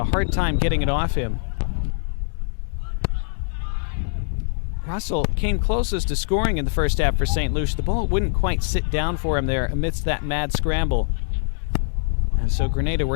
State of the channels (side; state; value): right; silent; digital silence